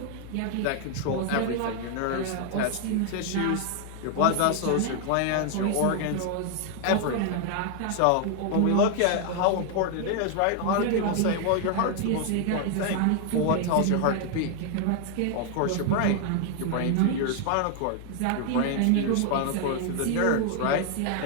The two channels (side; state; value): both; different; correlation 0.00